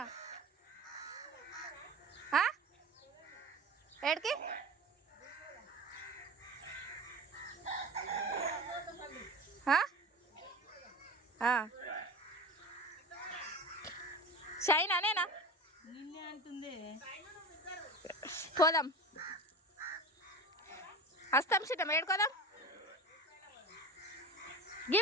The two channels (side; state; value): both; normal; correlation 0.33